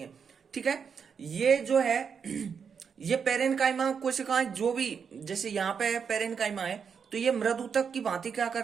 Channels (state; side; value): quieter; left; 6.5 dB